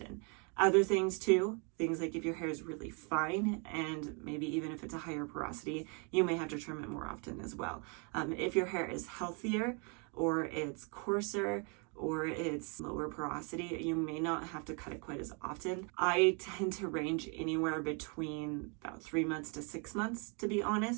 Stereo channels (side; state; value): left; quieter; 35.5 dB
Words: Other things too, things like if your hair is really fine, and maybe even if it's a higher porosity, you may have to trim it more often as well. If your hair is healthier, or it's coarser, or it's lower porosity, you may not have to cut it quite as often. I tend to range anywhere between about 3 months to 6 months, to be